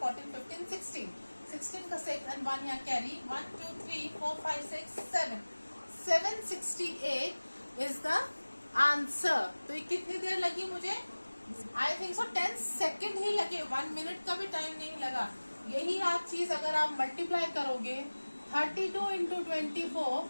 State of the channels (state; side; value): inverted; both; correlation -1.00